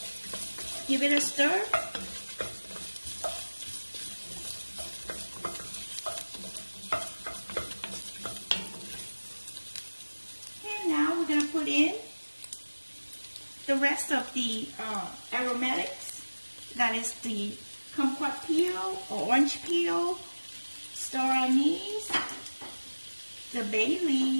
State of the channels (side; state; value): both; inverted; correlation -1.00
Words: Give it a stir. And now we're going to put in the rest of the aromatics. That is the kumquat peel or orange peel, star anise, the bay